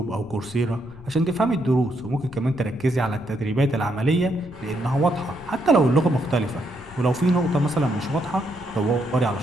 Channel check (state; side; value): noise; left; rumble, 20 dB below the sound